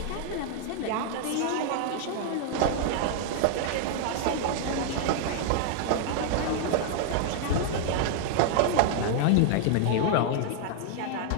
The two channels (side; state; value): both; different; correlation 0.00